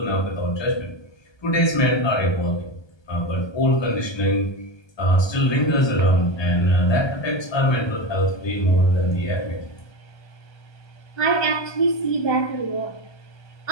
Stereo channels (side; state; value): right; late; 1.2 ms